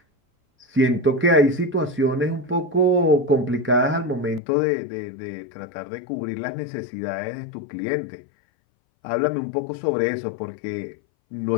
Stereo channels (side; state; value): right; drops out; at 4.4 s